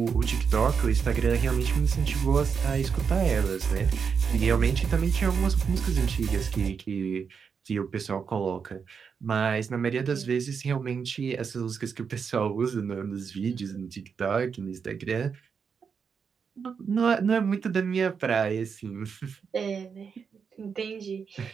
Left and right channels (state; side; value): quieter; left; 6.2 dB